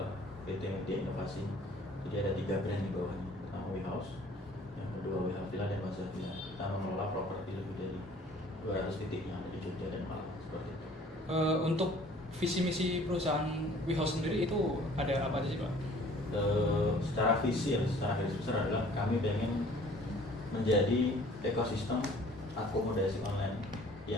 PT Media Inovasi. Jadi ada 3 brand di bawahnya. Pertama WeHouse, yang kedua WeHouse Villa dan Plaza Villa. Kita mengelola properti lebih dari 200 titik yang ada di Jogja dan Malang seperti itu. Untuk visi misi perusahaan WeHouse sendiri itu ada apa aja sih Pak? Secara visi ya, secara garis besar adalah kami ingin menjadi ekosistem akomodasi online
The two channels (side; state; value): both; normal; correlation 0.53